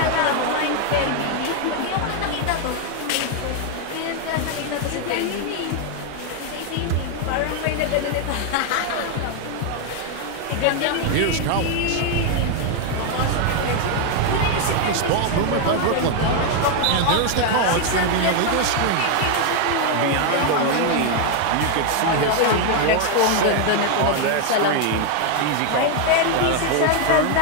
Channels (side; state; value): both; different; correlation 0.01